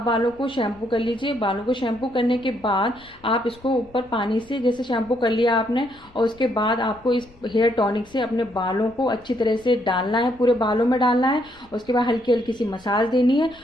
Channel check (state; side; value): noise; left; rumble, 27 dB below the sound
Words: बालों को शैम्पू कर लीजिए। बालों को शैम्पू करने के बाद आप इसको ऊपर पानी से जैसे शैम्पू कर लिया आपने, और उसके बाद आपको इस हेयर टॉनिक से अपने बालों को अच्छी तरह से डालना है, पूरे बालों में डालना है। उसके बाद हल्की हल्की सी मसाज देनी है